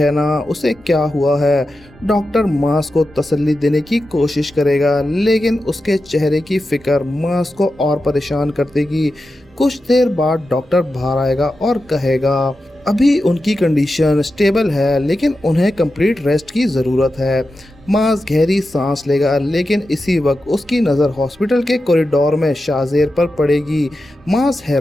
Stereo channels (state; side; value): normal; both; correlation 0.91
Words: ना, उसे क्या हुआ है। डॉक्टर मास को तसल्ली देने की कोशिश करेगा लेकिन उसके चेहरे की फिक्र मास को और परेशान कर देगी। कुछ देर बाद डॉक्टर बाहर आएगा और कहेगा अभी उनकी कंडीशन स्टेबल है लेकिन उन्हें कंप्लीट रेस्ट की ज़रूरत है। मास गहरी सांस लेगा लेकिन इसी वक्त उसकी नज़र हॉस्पिटल के कॉरिडोर में शाज़ेर पर पड़ेगी। मास